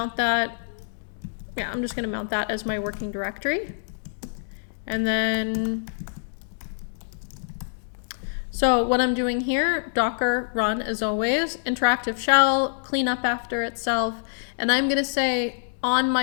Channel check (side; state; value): right; silent; digital silence